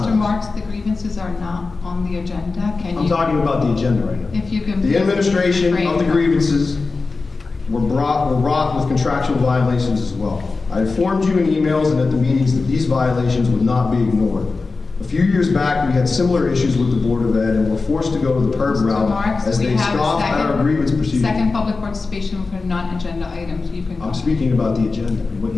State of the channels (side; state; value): right; quieter; 4.0 dB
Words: Marks, the grievances are not on the agenda. Can I'm you? talking about the agenda right now. If you can. The please administration refrain of the from- grievances were wrought with contractual violations as well. I informed you in emails and at the meetings that these violations would not be ignored. A few years back, we had similar issues with the Board of Ed and were forced to go to the PERB Mr. route Marks, as we they have a scoffed at our grievance procedure. second public participation for non-agenda items. You can go. I'm speaking about the agenda and what